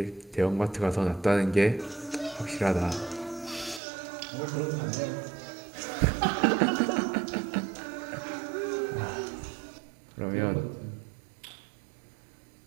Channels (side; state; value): left; drops out; at 3.8 s